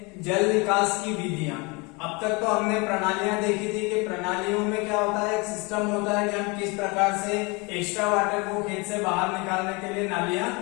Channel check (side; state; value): right; quieter; 28.2 dB